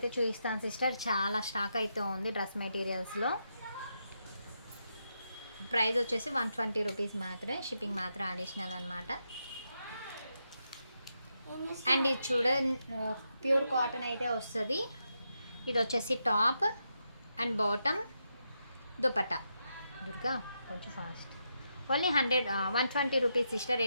చూపిస్తాను సిస్టర్. చాలా స్టాక్ అయితే ఉంది డ్రెస్ మెటీరియల్స్లో. ప్రైస్ వచ్చేసి 120 రూపీస్ మాత్రమే, షిప్పింగ్ మాత్రం అడిషనల్ అనమాట. అండ్ ఇది చూడ ప్యూర్ కాటన్ అయితే వస్తుంది. ఇది వచ్చేసి top and bottom, dupatta. Durga కొంచెం ఫాస్ట్. Only 120 rupees sister. ఏ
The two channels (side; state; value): both; inverted; correlation -0.83